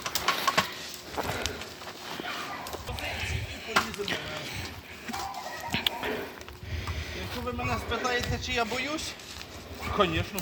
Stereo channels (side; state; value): both; identical; correlation 1.00